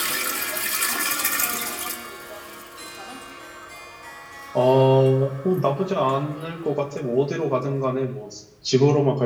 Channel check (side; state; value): both; identical; correlation 1.00